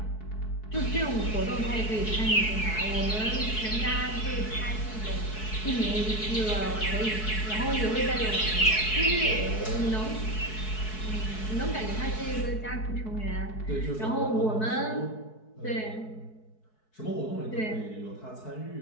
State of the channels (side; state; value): right; late; 4.6 ms